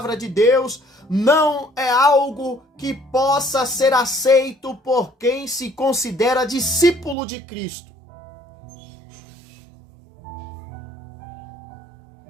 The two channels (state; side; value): drops out; left; at 7.2 s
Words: de Deus não é algo que possa ser aceito por quem se considera discípulo de Cristo.